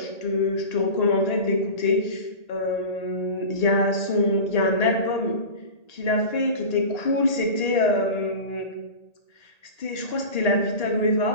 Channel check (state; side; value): late; right; 1.8 ms